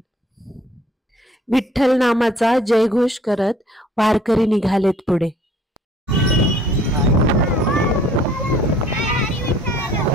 विठ्ठल नामाचा जयघोष करत वारकरी निघालेत पुढे.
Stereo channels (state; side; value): normal; both; correlation 0.57